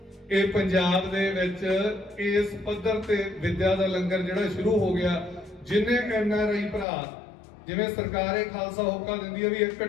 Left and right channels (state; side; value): drops out; right; at 6.9 s